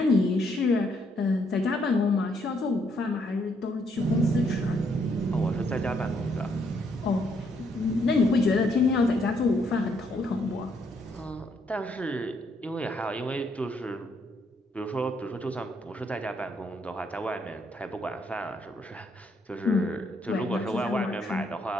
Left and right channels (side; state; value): both; normal; correlation 0.72